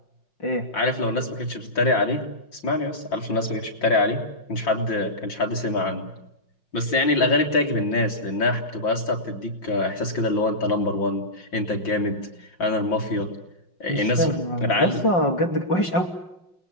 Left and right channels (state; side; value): late; right; 5.6 ms